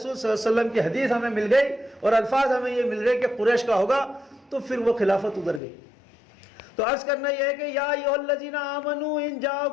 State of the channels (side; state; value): right; drops out; at 5.6 s